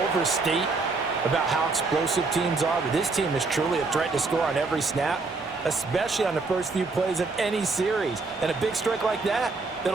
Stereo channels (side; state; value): left; quieter; 3.8 dB